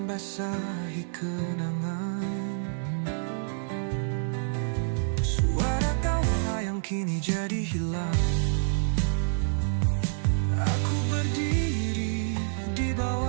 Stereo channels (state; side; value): silent; left; 59 dB below the other